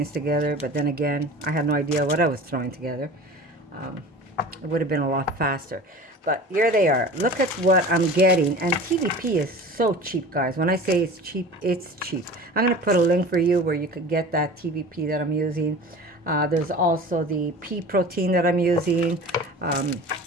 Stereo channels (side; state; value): both; normal; correlation 0.38